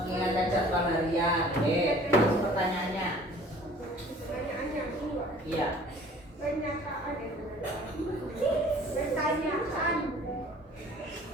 jadwal harian. Pertanyaannya. Pertanyaannya dua. Iya. Pernyataan pertanyaan.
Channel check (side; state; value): both; normal; correlation 0.51